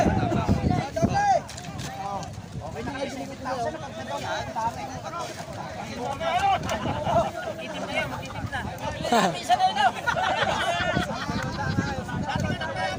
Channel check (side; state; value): both; identical; correlation 1.00